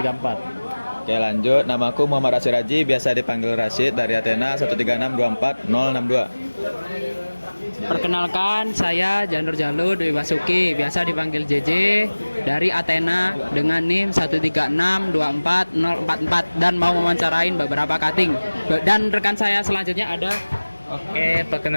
Oke lanjut, namaku Muhammad Rashid Raji, biasa dipanggil Rashid dari Athena 13624 Perkenalkan, saya Janur Jalu Dwi Basuki, biasa dipanggil JJ dari Athena dengan NIM 136240044 dan mau mewawancarain beberapa cutting. Dan rekan saya selanjutnya ada Oke,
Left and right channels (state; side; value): inverted; both; correlation -1.00